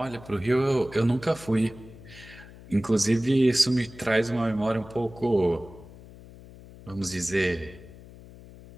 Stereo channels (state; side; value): noise; left; hum, 19 dB below the sound